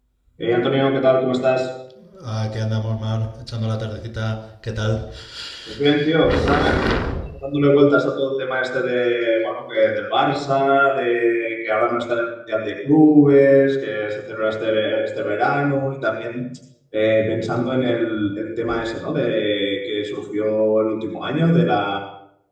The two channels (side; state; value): both; identical; correlation 1.00